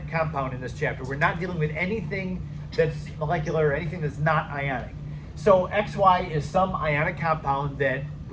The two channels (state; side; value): identical; both; correlation 1.00